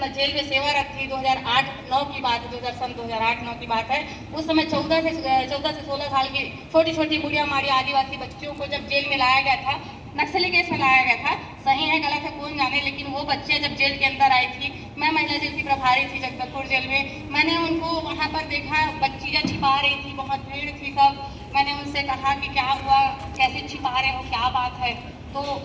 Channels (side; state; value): both; identical; correlation 1.00